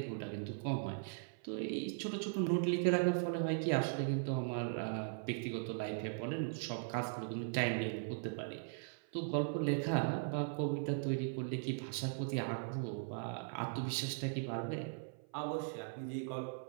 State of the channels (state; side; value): silent; left; 52 dB below the other